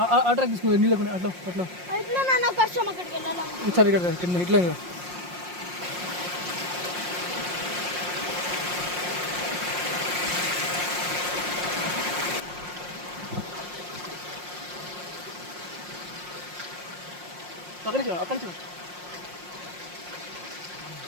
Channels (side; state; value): left; late; 5.6 ms